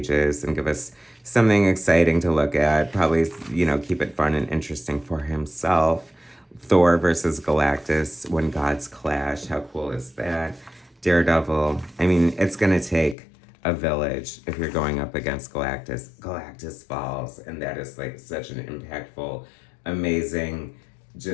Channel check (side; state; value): right; drops out; at 13.2 s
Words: and give us something exciting to look at. Probably, you know, keep it fun and interesting for himself. Thor versus Galactus, when gods clash. How cool is that? Daredevil. I mean, it's going to take a village if you're going up against Galactus. Galactus falls, and that is like such an impactful, amazing,